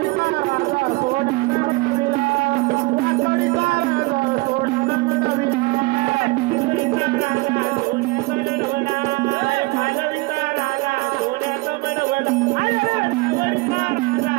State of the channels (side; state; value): left; quieter; 23.4 dB